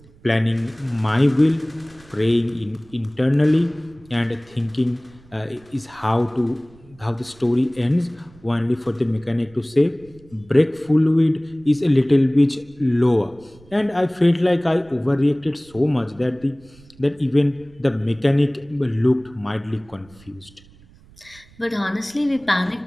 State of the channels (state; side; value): noise; right; rumble, 26 dB below the sound